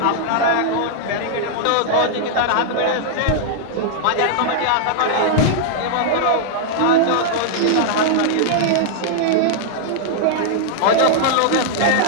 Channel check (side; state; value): both; different; correlation -0.01